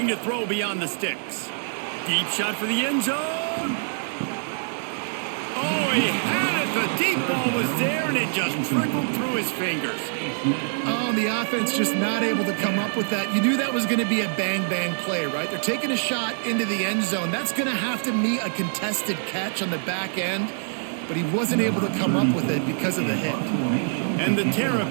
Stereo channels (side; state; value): left; silent; digital silence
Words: to throw beyond the sticks. Deep shot for the end zone. Oh, he had it. The deep ball was there, and it just trickled through his fingers. Oh, the offense just not able to come up with that. You knew that was going to be a bang-bang play, right? They're taking a shot into the end zone. That's going to have to meet a contested catch on the back end. But he wasn't able to come up with it because of the hit. And the